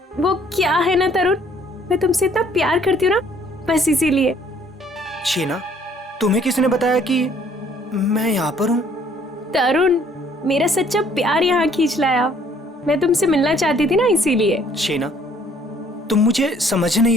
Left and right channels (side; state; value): both; normal; correlation 0.61